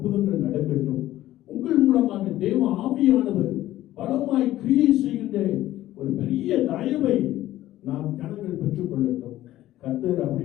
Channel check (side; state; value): right; quieter; 14.6 dB